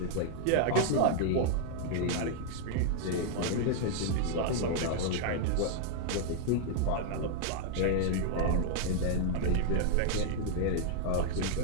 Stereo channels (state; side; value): different; both; correlation 0.00